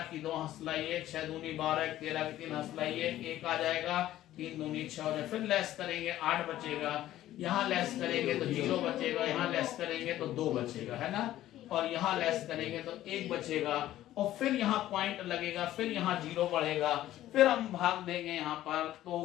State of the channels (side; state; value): right; quieter; 13.8 dB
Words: की 2 हंसला 1, 6 दूनी 12 13 की 3 हंसला 1 आ जाएगा, 3 दूनी 6 हो जाएगा। फिर लेस करेंगे 8 बचेगा, यहाँ लेस करेंगे तो 0 बचेगा, यहाँ लेस करेंगे तो 2 बचेगा, है ना, और यहाँ लेस करेंगे तो 1 बचेगा, और फिर यहाँ पॉइंट लगेगा, फिर यहाँ 0 बढ़ेगा, फिर हम भाग देंगे यहाँ पर,